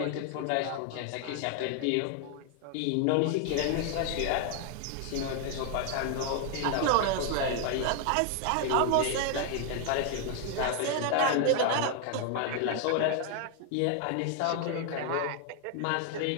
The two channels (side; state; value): both; different; correlation 0.00